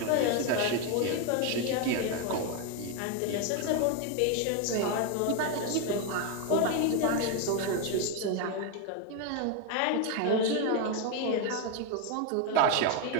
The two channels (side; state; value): both; different; correlation 0.02